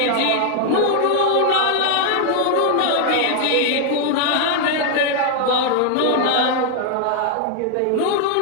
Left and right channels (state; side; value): different; both; correlation 0.00